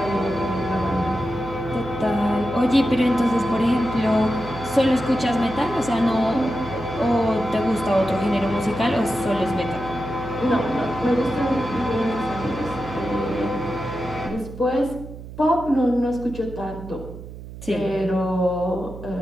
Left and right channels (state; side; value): noise; right; hum, 13 dB below the sound